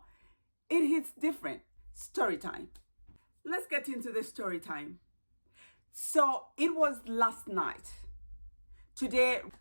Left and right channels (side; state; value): both; inverted; correlation -1.00